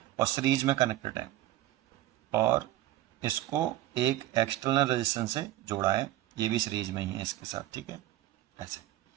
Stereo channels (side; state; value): left; quieter; 14.7 dB